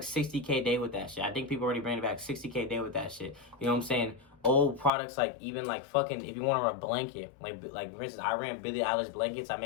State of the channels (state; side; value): drops out; right; at 4.9 s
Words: 60K day with that shit. I think people already bring it back, 60K day with that shit. You know what I'm saying? Old products, like even like fucking, if you want to run a blanket, like for instance, I ran Billie Eilish blankets. I